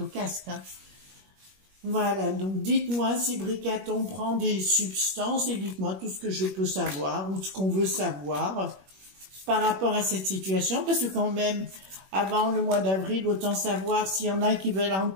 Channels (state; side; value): late; left; 21 ms